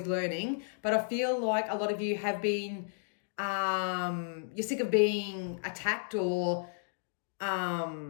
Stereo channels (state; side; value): silent; right; digital silence